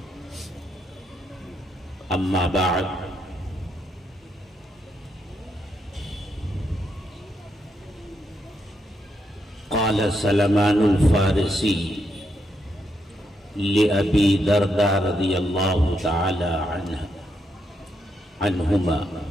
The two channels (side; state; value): both; normal; correlation 0.80